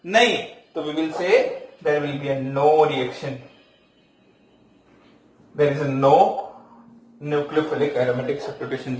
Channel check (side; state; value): both; identical; correlation 1.00